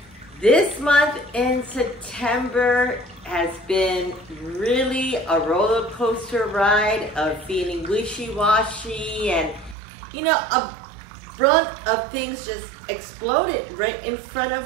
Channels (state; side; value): drops out; left; at 9.8 s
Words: This month in September has been really a roller coaster ride of feeling wishy-washy and a brunt of things just exploded right in front of